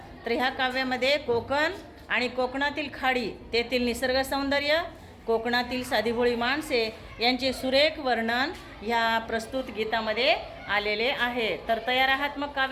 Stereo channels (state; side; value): identical; both; correlation 1.00